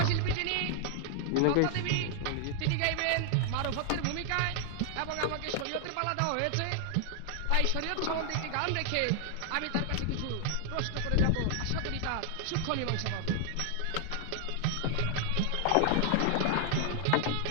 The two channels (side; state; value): both; different; correlation 0.00